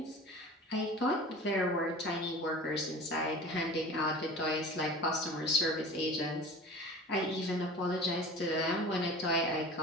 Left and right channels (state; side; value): normal; both; correlation 0.38